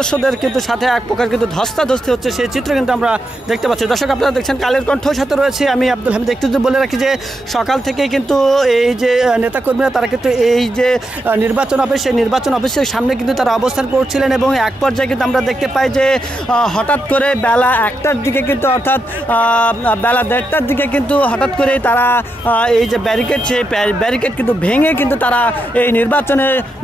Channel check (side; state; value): both; normal; correlation 0.85